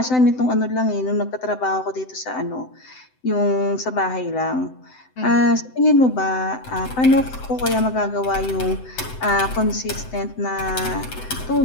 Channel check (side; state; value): right; late; 7.8 ms